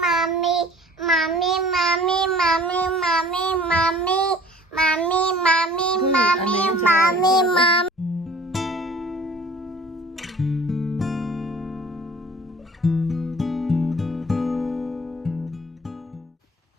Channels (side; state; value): both; normal; correlation 0.49